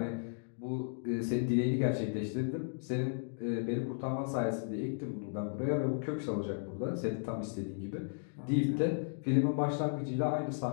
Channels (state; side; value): silent; right; digital silence